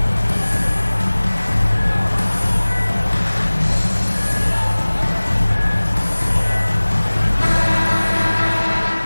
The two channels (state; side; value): inverted; both; correlation -1.00